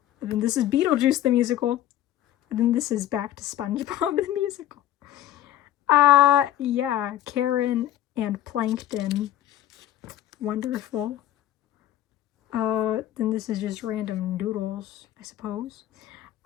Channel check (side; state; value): right; quieter; 12.4 dB